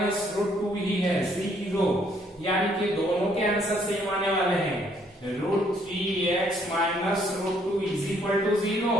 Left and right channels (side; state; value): both; normal; correlation 0.67